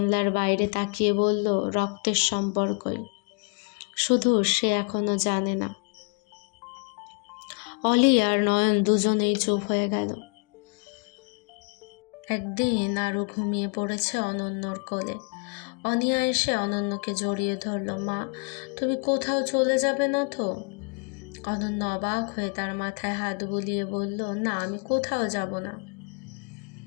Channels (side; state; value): right; quieter; 37.0 dB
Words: বাইরে তাকিয়ে বলল, রক্তের সম্পর্কই, শুধু সে এখনো জানে না। অলি আর নয়ন দুজনেই চুপ হয়ে গেল। একদিন আরও ঘুমিয়ে পড়েছে অনন্যর কোলে। অনিয়া এসে অনন্যকে জড়িয়ে ধরল। মা, তুমি কোথাও চলে যাবে না তো? অনন্য অবাক হয়ে তার মাথায় হাত বুলিয়ে বলল, না, আমি কোথাও যাব না।